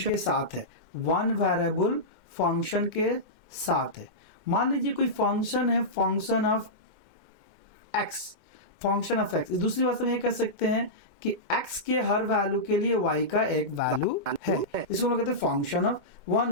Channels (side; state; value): left; late; 2.1 ms